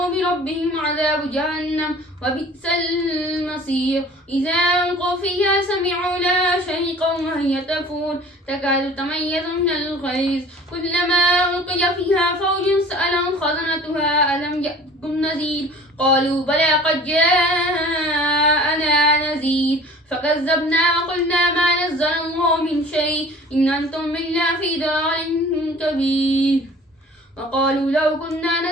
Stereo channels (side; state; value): both; normal; correlation 0.46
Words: بربهم عذاب جهنم وبئس المصير. إذا ألقوا فيها سمعوا لها شهيقا وهي تفور تكاد تميز من الغيظ، كلما ألقي فيها فوج سألهم خزنتها ألم يأتكم نذير، قالوا بلى قد جاءنا نذير فكذبنا وقلنا ما نزل الله من شيء إن أنتم إلا في ضلال كبير، وقالوا لو كنا